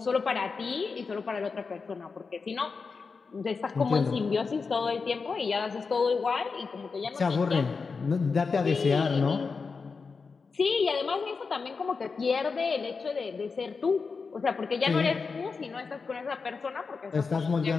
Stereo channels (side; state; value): right; quieter; 4.8 dB